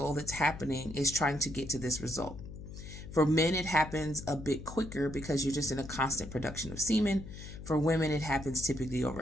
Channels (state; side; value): noise; left; hum, 12 dB below the sound